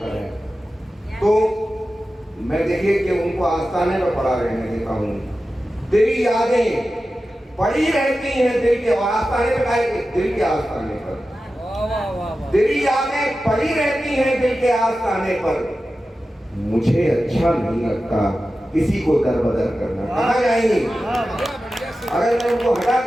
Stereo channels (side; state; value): both; normal; correlation 0.93